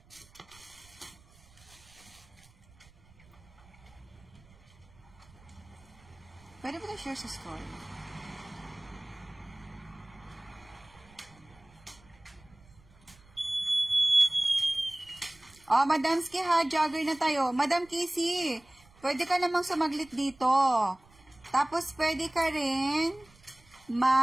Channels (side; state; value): right; noise; rumble, 26 dB below the sound